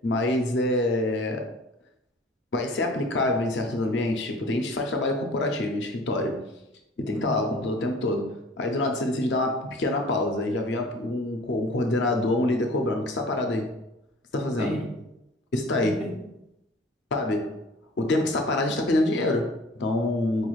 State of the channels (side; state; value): both; normal; correlation 0.47